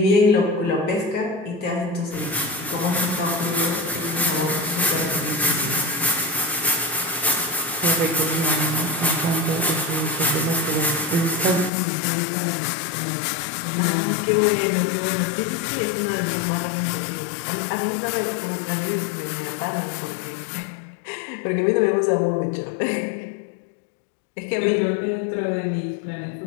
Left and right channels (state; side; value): drops out; right; at 11.7 s